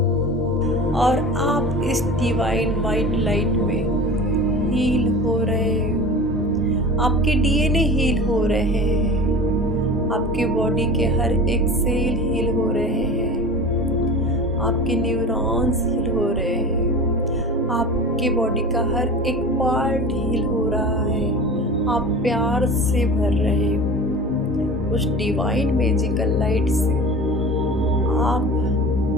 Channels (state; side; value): normal; both; correlation 0.35